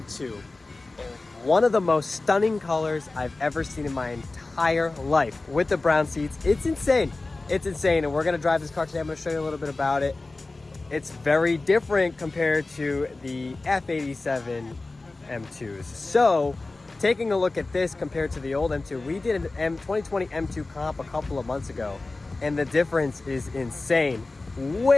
One of the most stunning colors I've ever seen in my entire life. With the brown seats, it's insane. It's insane, and we're gonna drive this car today. I'm gonna show you a little bit about it. It's very different compared to the F87 M2s. So, taking a look at this compared to the old M2, we did an 2020 M2 comp a couple of months ago, and the difference is insane.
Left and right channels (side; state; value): right; quieter; 3.3 dB